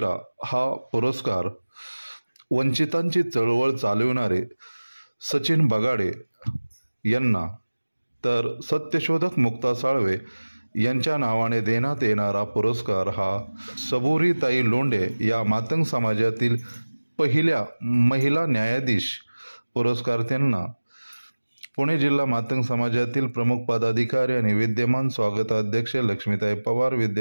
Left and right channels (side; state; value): both; inverted; correlation -1.00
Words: हा पुरस्कार वंचितांची चळवळ चालविणारे सचिन बगाडे यांना, तर सत्यशोधक मुक्ता साळवे यांच्या नावाने देण्यात येणारा पुरस्कार हा सबुरीताई लोंढे या मातंग समाजातील पहिल्या महिला न्यायाधीश पुरस्कार्थ्यांना, पुणे जिल्हा मातंग समाजातील प्रमुख पदाधिकारी आणि विद्यमान स्वागताध्यक्ष लक्ष्मीताई पवार,